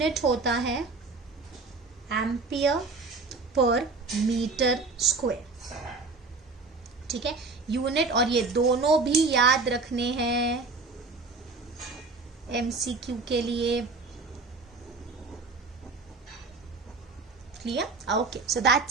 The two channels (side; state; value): left; quieter; 3.9 dB